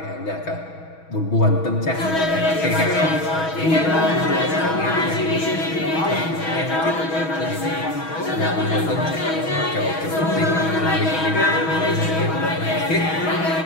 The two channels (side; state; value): right; late; 6.2 ms